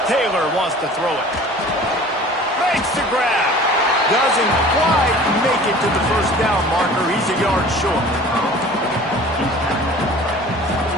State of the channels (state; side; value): normal; both; correlation 0.45